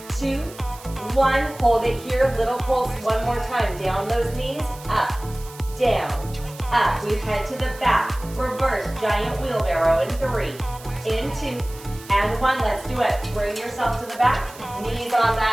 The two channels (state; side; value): noise; right; hiss, 19 dB below the sound